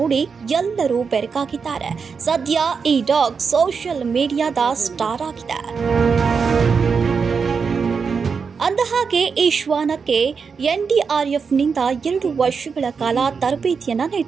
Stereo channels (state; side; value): quieter; left; 5.6 dB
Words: ಎಲ್ಲರೂ ಬೆರಗಾಗಿದ್ದಾರೆ. ಸದ್ಯ ಈ ಡಾಗ್ ಸೋಷಿಯಲ್ ಮೀಡಿಯಾದ ಸ್ಟಾರ್ ಆಗಿದೆ. ಅಂದಹಾಗೆ ಈ ಶ್ವಾನಕ್ಕೆ NDRFನಿಂದ 2 ವರ್ಷಗಳ ಕಾಲ ತರಬೇತಿಯನ್ನು